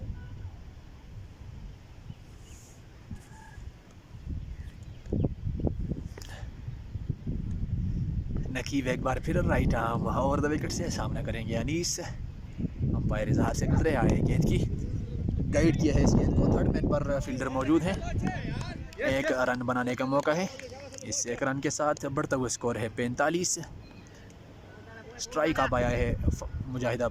नकीब एक बार फिर right arm over the wicket से सामना करेंगे अनीस। अंपायर इजहार से गुजरे आए, गेंद की गाइड किया है इस गेंद को। थर्ड मैन पर फील्डर मौजूद है। एक रन बनाने का मौका है। इस एक रन के साथ बढ़ता हुआ स्कोर है 45। स्ट्राइक आप आया है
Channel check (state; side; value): identical; both; correlation 1.00